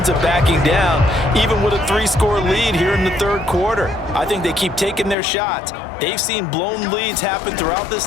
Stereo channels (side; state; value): right; drops out; at 5.2 s